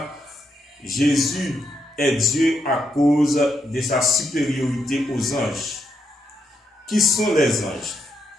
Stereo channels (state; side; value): normal; both; correlation 0.80